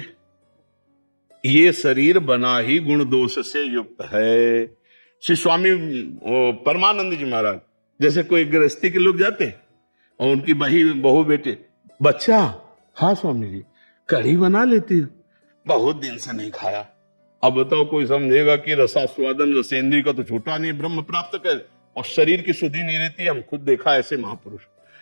ये शरीर बना ही गुण दोष से युक्त है। श्री स्वामी परमानंद जी महाराज जैसे कोई गृहस्थी के लोग जाते और उनकी बहू बेटे, बच्चा हाँ स्वामी जी कढ़ी बना लेती हो, बहुत दिन से नहीं खाया। अब बताओ कोई समझेगा कि रसास्वादन रसेंद्री का तो छूटा नहीं, ब्रह्म प्राप्त कर, और शरीर की शुद्धि नहीं रहती। हम खुद देखा ऐसे महापुरुष।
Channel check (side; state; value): both; inverted; correlation -1.00